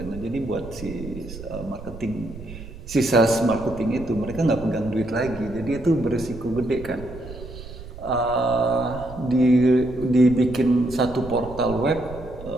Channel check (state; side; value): noise; right; rumble, 14 dB below the sound